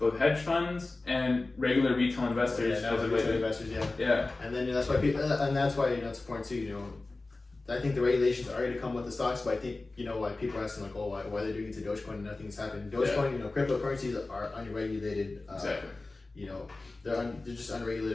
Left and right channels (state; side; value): quieter; right; 3.3 dB